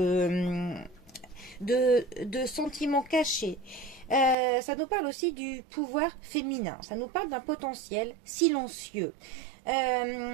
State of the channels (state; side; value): drops out; left; at 4.4 s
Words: sentiments cachés. Ça nous parle aussi du pouvoir féminin. Ça nous parle d'un potentiel silencieux.